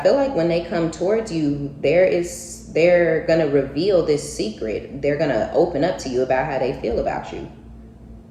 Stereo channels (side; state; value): both; identical; correlation 1.00